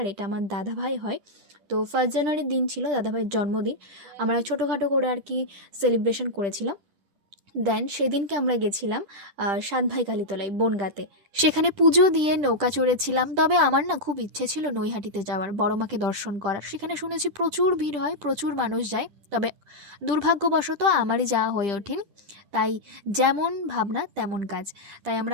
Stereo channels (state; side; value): late; left; 10 ms